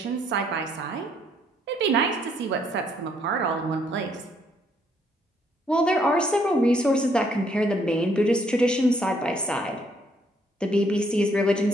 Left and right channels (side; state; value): both; normal; correlation 0.69